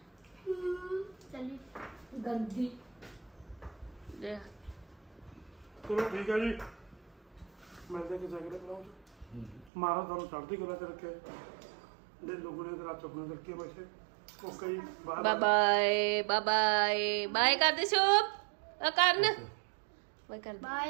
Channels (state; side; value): drops out; left; at 9.7 s